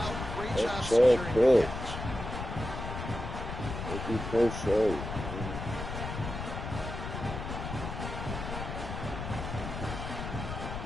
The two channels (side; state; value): left; noise; rumble, 6 dB below the sound